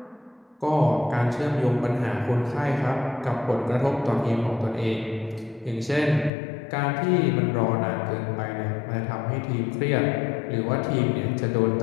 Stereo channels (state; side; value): drops out; right; at 6.3 s